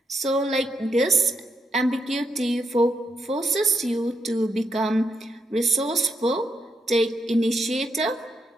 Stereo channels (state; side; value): normal; both; correlation 0.80